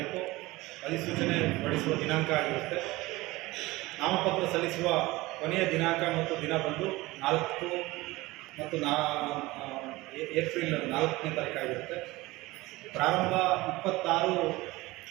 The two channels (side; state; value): left; quieter; 20.2 dB